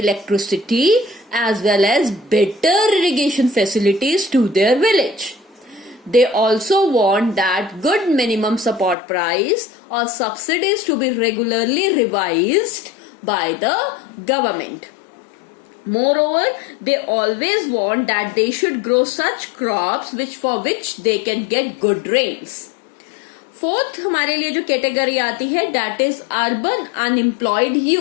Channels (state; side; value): drops out; right; at 9.0 s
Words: as well as better irrigation facilities to their village. They also want that good minimum support price or subsidies to be regularly revised by the government. Moreover, they always want that they should grow such crops for which they can get good rains. Fourth हमारे लिए जो category आती है, that is urban unemployed